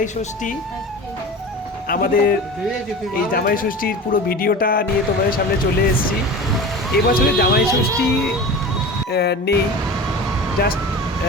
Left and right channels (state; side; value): normal; both; correlation 0.33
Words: ষষ্ঠী। আমাদের এই জামাই ষষ্ঠীর পুরো ভিডিওটা নিয়ে তোমাদের সামনে চলে এসেছি। এবছরে জামাই ষষ্ঠী নেই, জাস্ট